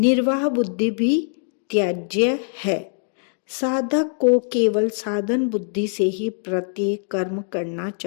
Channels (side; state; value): right; silent; 64 dB below the other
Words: बुद्धि भी त्याज्य है। साधक को केवल साधन बुद्धि से ही प्रत्येक कर्म करना